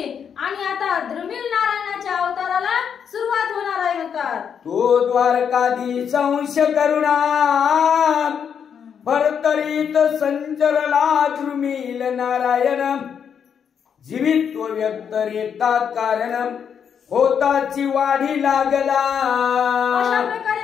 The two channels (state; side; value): quieter; right; 7.6 dB